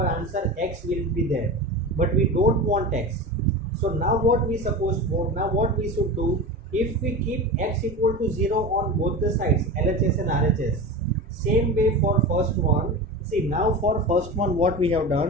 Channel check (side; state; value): both; normal; correlation 0.27